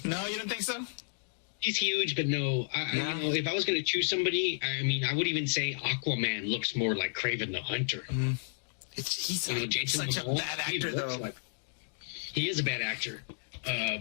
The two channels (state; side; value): silent; right; digital silence